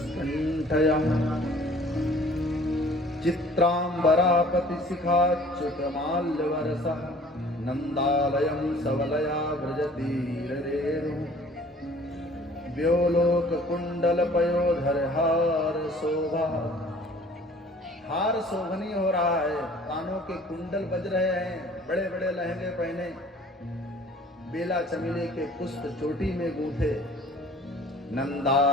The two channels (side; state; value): both; normal; correlation 0.51